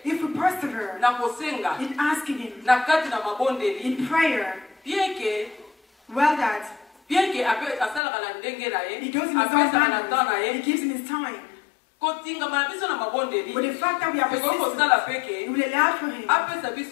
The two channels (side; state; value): right; drops out; at 8.0 s